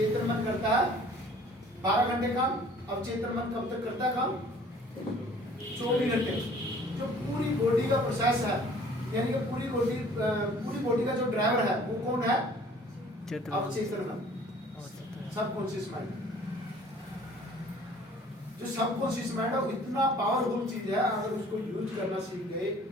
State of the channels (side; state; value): both; normal; correlation 0.52